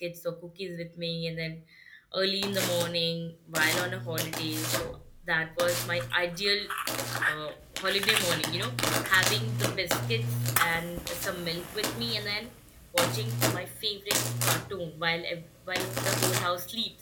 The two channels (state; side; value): identical; both; correlation 1.00